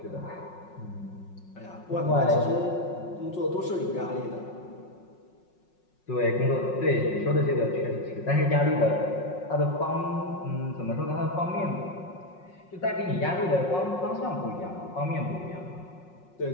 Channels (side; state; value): right; late; 5.5 ms